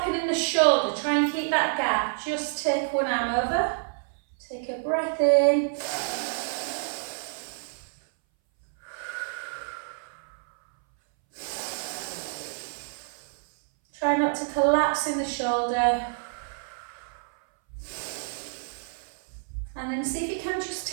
in the shoulder, try and keep that gap. Just take one arm over. Take a breath in. Try not to collapse in the shoulder. And then see if you can just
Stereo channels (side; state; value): left; silent; 59 dB below the other